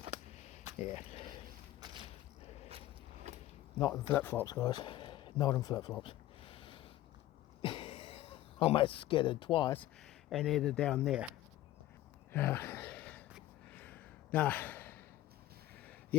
Yeah. Not in flip-flops, guys. Not in flip-flops. Almost skidded twice and ended down there. Nah.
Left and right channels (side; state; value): right; quieter; 14.9 dB